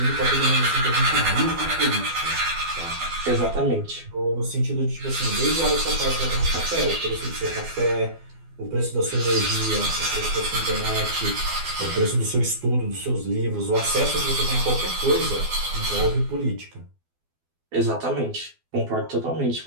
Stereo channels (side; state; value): left; late; 12 ms